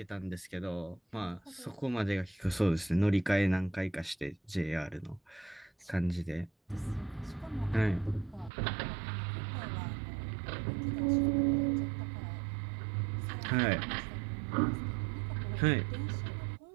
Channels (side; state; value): left; drops out; at 8.5 s